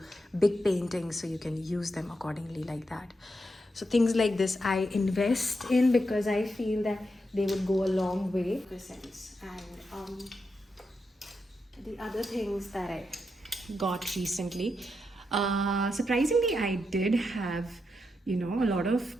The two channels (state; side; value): normal; both; correlation 0.84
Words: big paintings, so you can use them accordingly like that. So things like this I invest in, because I feel that they would go a long way in this sense. And the other things that I got recently, surprisingly, I did have a lot